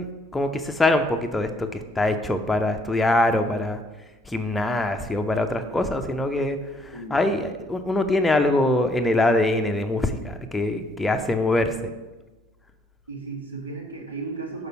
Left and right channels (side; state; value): both; normal; correlation 0.68